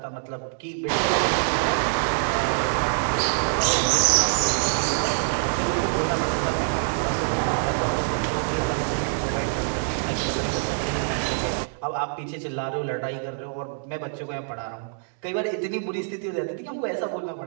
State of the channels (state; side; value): silent; left; digital silence